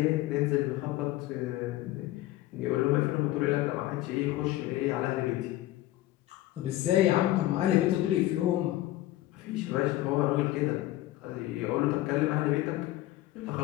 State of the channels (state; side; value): quieter; right; 15.9 dB